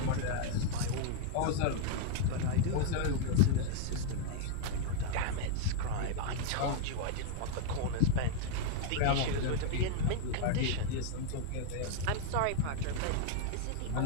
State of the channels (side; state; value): both; different; correlation 0.00